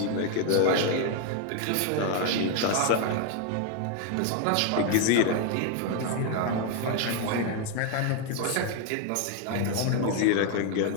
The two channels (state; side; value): different; both; correlation 0.01